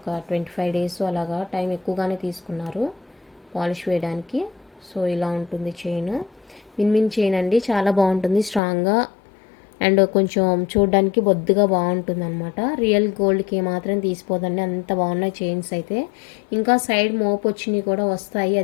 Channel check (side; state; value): right; drops out; at 8.6 s